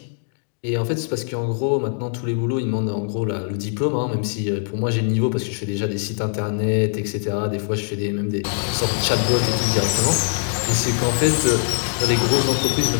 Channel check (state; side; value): silent; right; digital silence